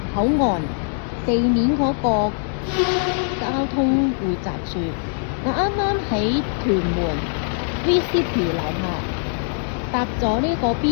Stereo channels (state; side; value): silent; right; 63 dB below the other